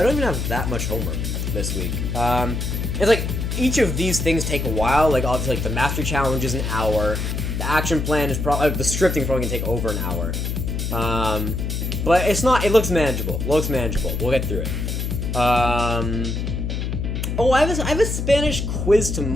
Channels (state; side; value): noise; left; hum, 2 dB below the sound